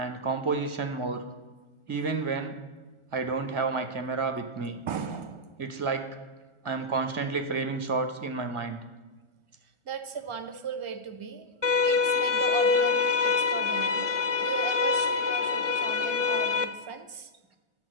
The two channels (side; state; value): left; late; 1.4 ms